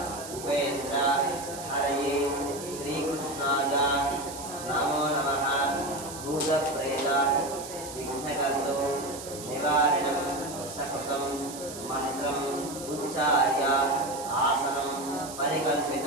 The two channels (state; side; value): noise; right; hiss, 12 dB below the sound